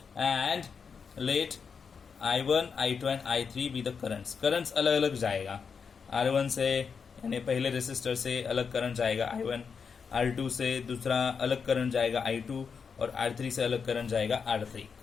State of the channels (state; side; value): quieter; right; 5.9 dB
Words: and let I1, I2 and I3 be the currents. currents अलग अलग जाएगा. R1 से यानी पहले रेसिस्टर से अलग करंट जाएगा I1, R2 से दूसरा अलग करंट जाएगा I2 और R3 से अलग करंट जाएगा R3.